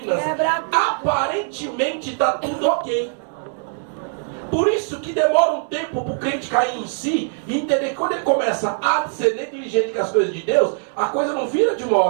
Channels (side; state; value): left; silent; 65 dB below the other